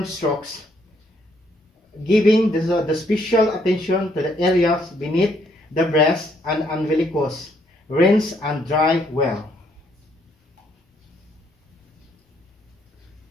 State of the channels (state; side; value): normal; both; correlation 0.70